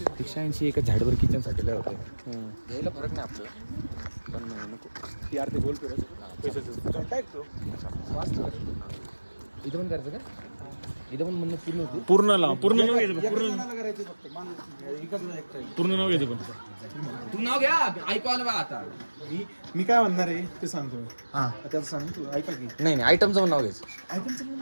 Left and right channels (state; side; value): inverted; both; correlation -1.00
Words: 180 एका झाडवर किचन साठी लय होते, यायला फरक नाही आपल्याला, पण नको यार ते बोलतो रे. इथं पण करायचं का? इथं पण म्हणणं पूर्ण होती. पूर्ण लाव, पूर्ण नाव घ्यायचं करायचं फक्त. पूर्ण नाव घ्यायचं पण तू नाव घ्या, ऐकू आलं बा आता. मी काय म्हणणार आहे ते सांगतो मी. हा त्याचं सांग तू, ऐका की. नाही आयटमचं पण नाव घ्यायचं. आयटमचं पण